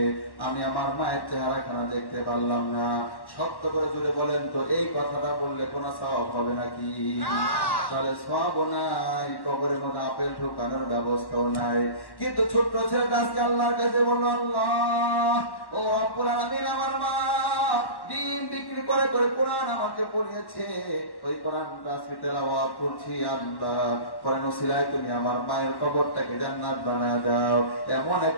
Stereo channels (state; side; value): late; right; 1.1 ms